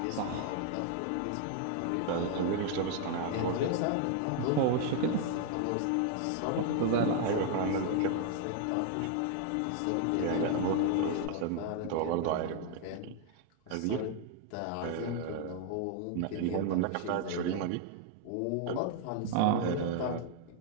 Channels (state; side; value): different; both; correlation 0.00